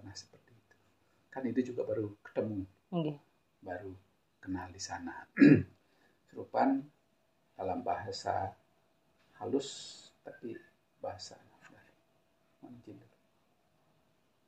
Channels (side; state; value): both; identical; correlation 1.00